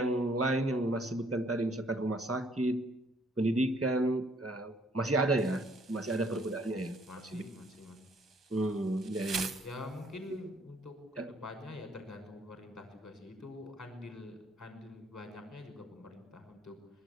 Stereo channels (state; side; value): normal; both; correlation 0.64